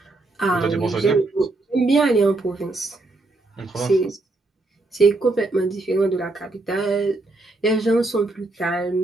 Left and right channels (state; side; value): quieter; left; 3.0 dB